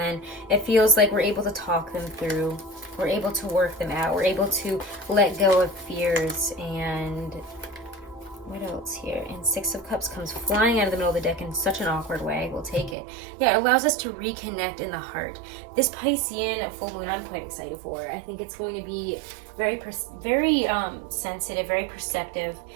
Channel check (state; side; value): drops out; left; at 13.0 s